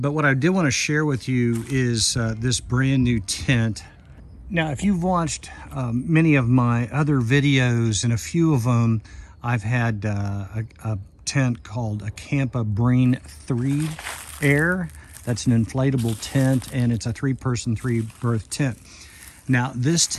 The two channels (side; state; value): both; identical; correlation 1.00